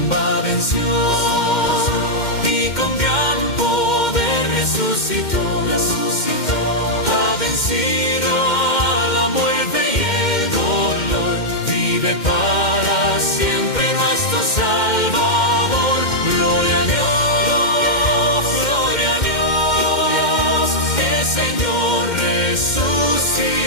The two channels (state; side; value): late; right; 2.1 ms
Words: venció y con gran poder resucitó. Ha vencido a la muerte y el dolor, vive para siempre nuestro Salvador. Gloria a Dios, gloria a Dios, el Señor